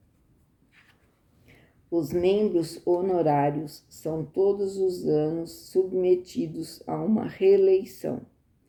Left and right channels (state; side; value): identical; both; correlation 1.00